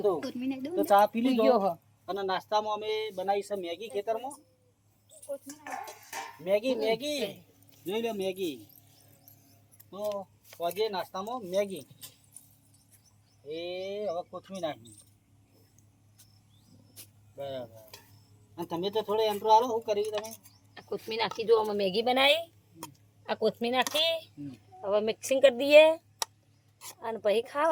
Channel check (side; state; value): both; identical; correlation 1.00